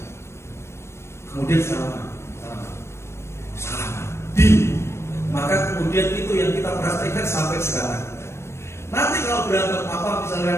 Kemudian salaman. Maka kemudian itu yang kita praktekkan sampai sekarang. Nanti kalau berantem apa,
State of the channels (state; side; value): late; right; 0.13 ms